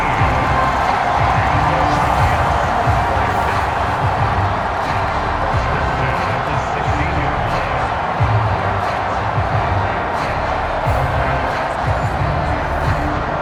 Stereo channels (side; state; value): both; identical; correlation 1.00